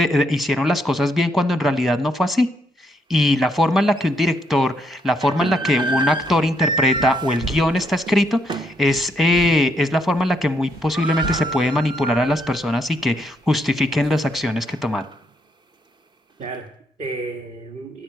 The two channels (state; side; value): normal; both; correlation 0.75